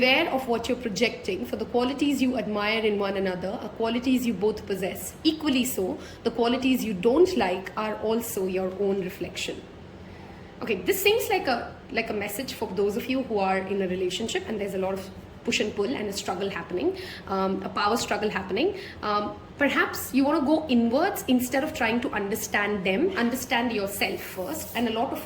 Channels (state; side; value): identical; both; correlation 1.00